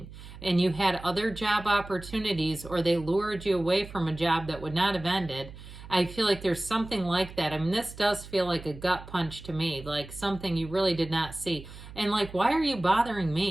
and you had other job opportunities or they lured you away from a job that would not have ended, I feel like there's something like that. I mean, this does feel like a gut punch to me, like something you really did not see. And like, why are you bothering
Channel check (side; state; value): right; noise; hum, 15 dB below the sound